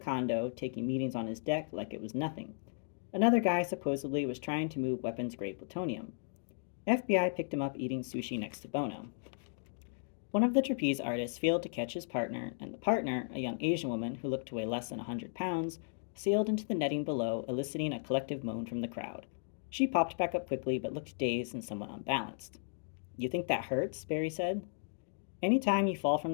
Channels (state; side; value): silent; right; digital silence